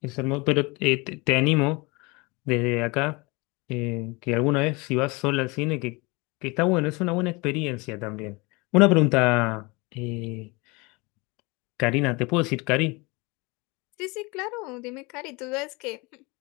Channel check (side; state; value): right; quieter; 26.5 dB